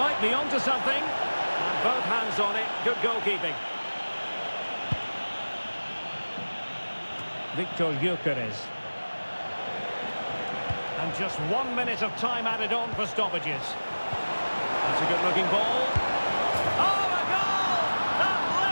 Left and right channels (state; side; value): inverted; both; correlation -1.00